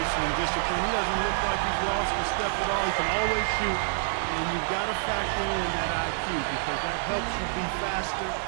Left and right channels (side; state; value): left; silent; 60 dB below the other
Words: and discipline. He doesn't look like he's lost a step at all. He can always shoot, and you've got to factor in that IQ because that helps you be faster